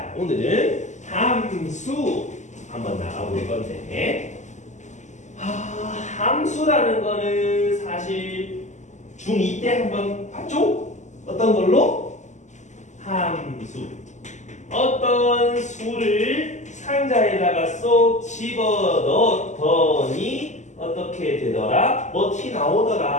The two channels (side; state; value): right; late; 0.34 ms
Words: 함수 한번 나가볼 건데, 함수라는 거는 사실 중2 때 한번 봤죠? 어떤 걸로? 함수. 어떤 수를 상자에다가 쏙 집어 넣었더니 어떻게 되더라? 뭐 티